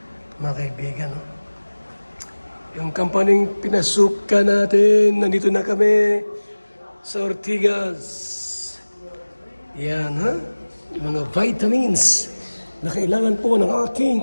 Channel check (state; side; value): inverted; both; correlation -1.00